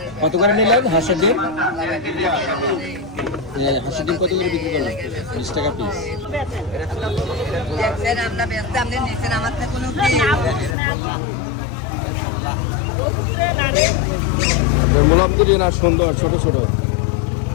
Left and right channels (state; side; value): drops out; right; at 10.8 s